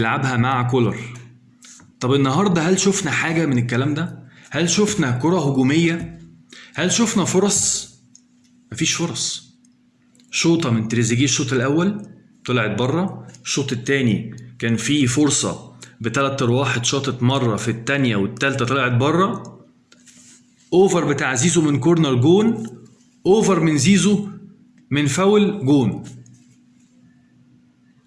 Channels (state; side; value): identical; both; correlation 1.00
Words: مع كولر. طب النهاردة هل شفنا حاجة من الكلام ده؟ هل شفنا كرة هجومية؟ هل شفنا فرص؟ مفيش فرص. شوطة من تريزيجيه الشوط الأول طلعت بره، الشوط التاني كان فيه فرصة بتلات أرواح اتشاطت مرة، في التانية والتالتة طلعت بره. أوفر بتاع زيزو من كورنر جون، أوفر من زيزو من فاول جون،